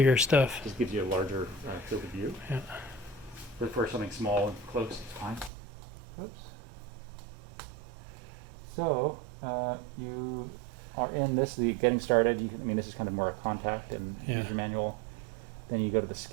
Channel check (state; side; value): drops out; left; at 5.5 s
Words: stuff. Just gives you a larger field of view. Yeah. But for something small and close, it's fine. Oops. So you are in this, getting started. This is kind of more a contact and user manual. Then you go to the